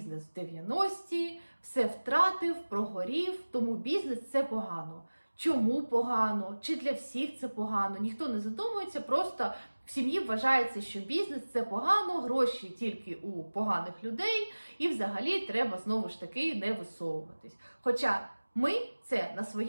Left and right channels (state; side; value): inverted; both; correlation -1.00